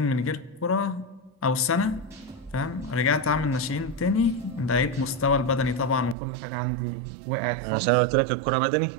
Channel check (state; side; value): drops out; left; at 6.2 s